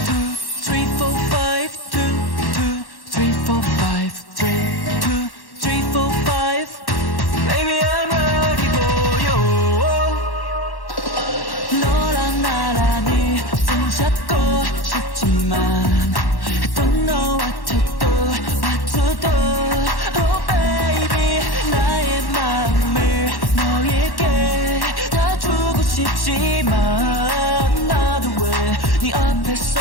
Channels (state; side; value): late; right; 1.1 ms